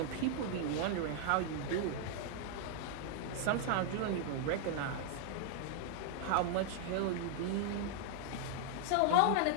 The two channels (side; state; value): both; different; correlation 0.00